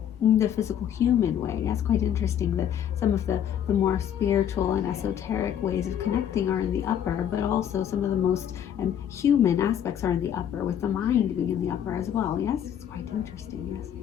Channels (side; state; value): right; quieter; 9.6 dB